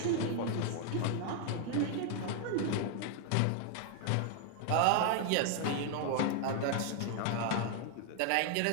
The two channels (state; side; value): different; both; correlation 0.00